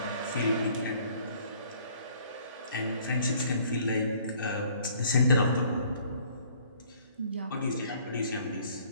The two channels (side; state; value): both; inverted; correlation -0.59